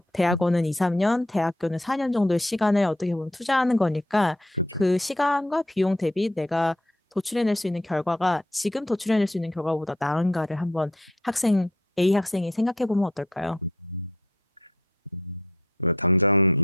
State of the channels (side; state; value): both; normal; correlation 0.65